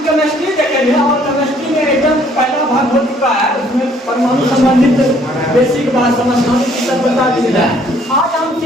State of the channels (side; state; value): both; normal; correlation 0.62